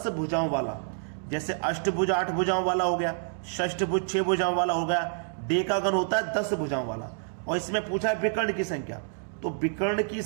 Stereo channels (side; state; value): left; silent; digital silence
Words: भुजाओं वाला, जैसे अष्टभुज 8 भुजाओं वाला हो गया, षष्ठभुज 6 भुजाओं वाला हो गया, डेकागन होता है 10 भुजाओं वाला। और इसमें पूछा है विकर्ण की संख्या, तो विकर्ण की